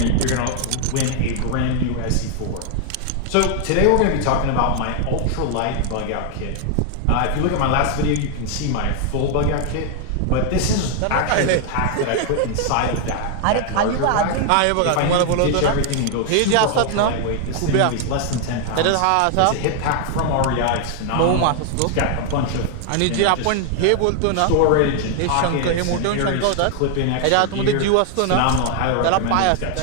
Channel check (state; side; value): different; both; correlation 0.00